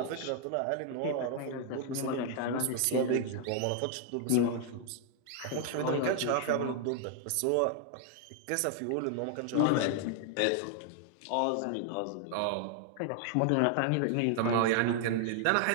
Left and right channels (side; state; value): both; different; correlation 0.00